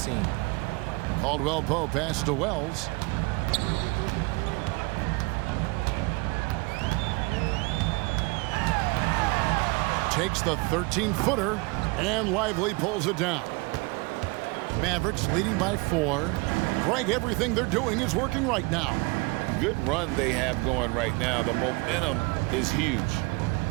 Caldwell Pope passes to Wells. Takes the 13-footer, and Lively pulls it down. Mavericks leading by 4. Greg, everything they're doing is working right now. Good run they have going right now. The momentum is huge.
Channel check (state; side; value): quieter; left; 26.5 dB